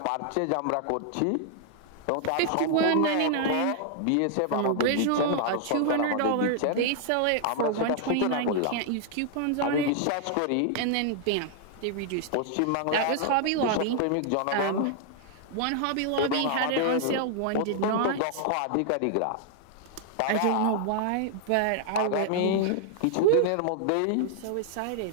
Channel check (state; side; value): different; both; correlation 0.00